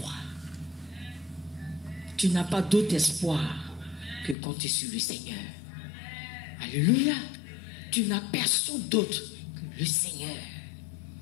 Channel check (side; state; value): right; drops out; at 4.4 s